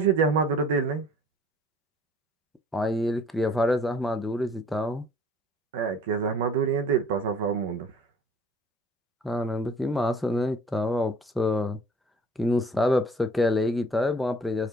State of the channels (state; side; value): normal; both; correlation 0.52